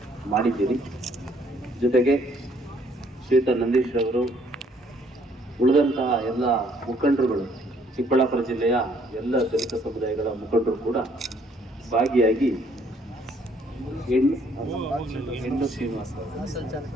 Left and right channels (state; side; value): normal; both; correlation 0.64